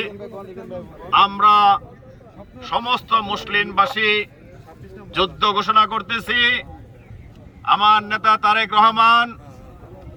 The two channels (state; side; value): identical; both; correlation 1.00